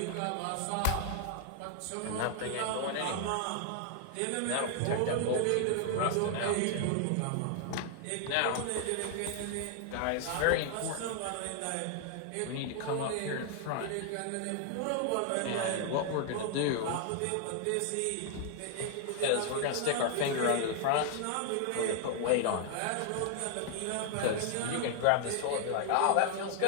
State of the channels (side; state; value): both; different; correlation 0.00